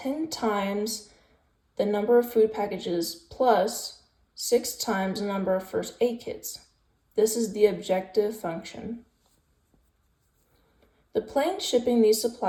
times the number of food packages plus 6 times the number of first aid kits. This is the objective function. The planes shipping these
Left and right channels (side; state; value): both; identical; correlation 1.00